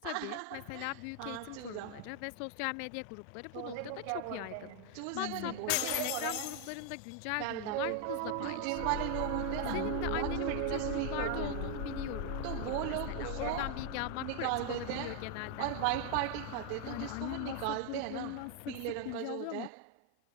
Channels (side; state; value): both; different; correlation 0.01